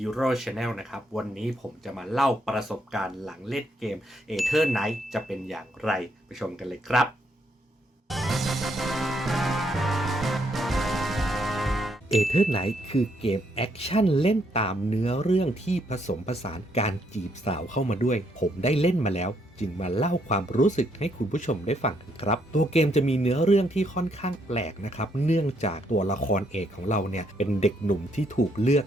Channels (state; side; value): normal; both; correlation 0.73